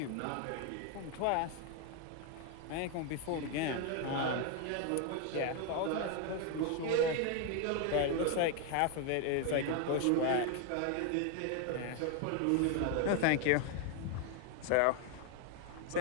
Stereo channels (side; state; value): both; different; correlation 0.01